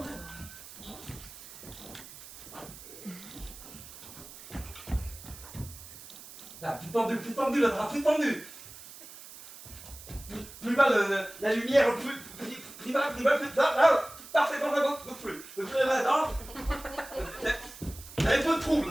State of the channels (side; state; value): right; noise; hiss, 16 dB below the sound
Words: Là, plus tendu, le drap, plus tendu. Plus bas, la lumière, plus bas, là, parfait, plus là, non. C'est un peu de